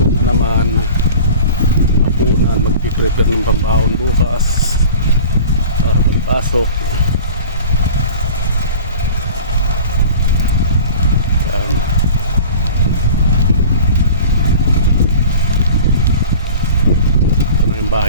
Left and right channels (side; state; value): both; inverted; correlation -0.40